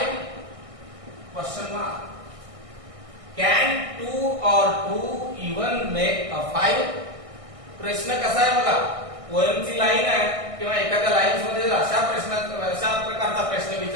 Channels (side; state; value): left; late; 1.6 ms